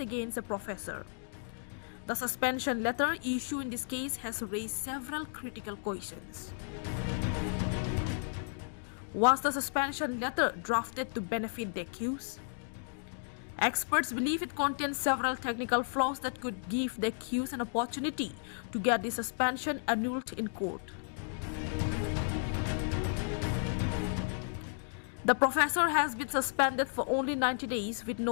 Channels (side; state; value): right; silent; digital silence